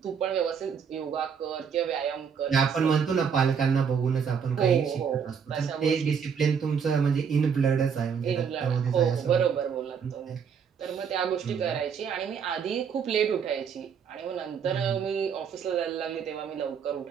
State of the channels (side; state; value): left; quieter; 6.8 dB